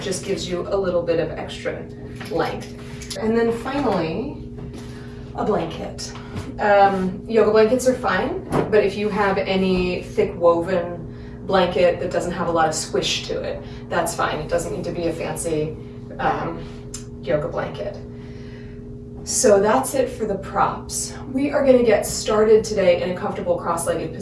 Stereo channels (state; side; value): identical; both; correlation 1.00